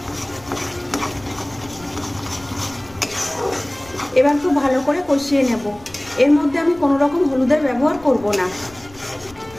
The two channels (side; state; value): left; noise; rumble, 24 dB below the sound